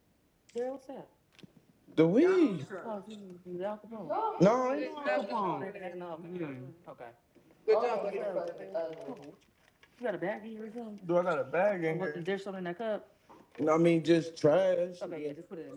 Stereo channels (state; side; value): identical; both; correlation 1.00